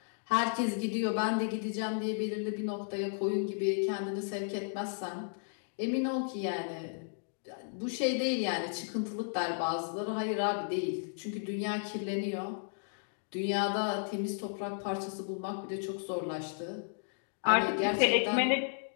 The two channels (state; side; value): silent; right; digital silence